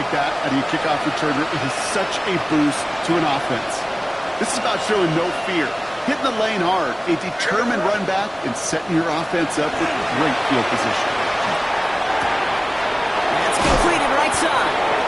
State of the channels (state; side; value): identical; both; correlation 1.00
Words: that out of your kickoff returner, it is such a boost to an offense. This is about showing no fear, hitting the lane hard, a determined run back, and setting your offense up with great field position. That's completed right side.